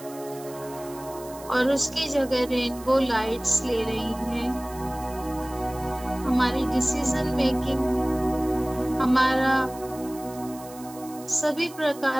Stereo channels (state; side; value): noise; right; hiss, 18 dB below the sound